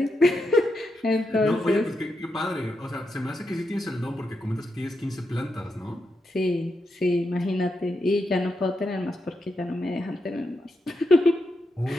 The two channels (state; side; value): normal; both; correlation 0.84